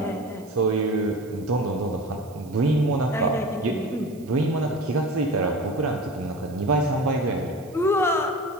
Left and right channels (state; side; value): noise; right; hiss, 26 dB below the sound